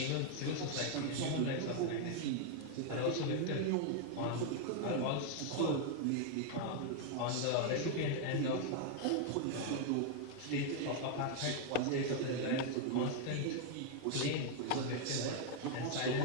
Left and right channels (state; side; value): different; both; correlation 0.00